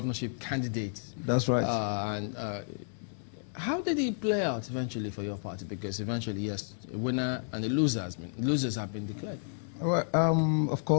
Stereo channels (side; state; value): right; silent; 57 dB below the other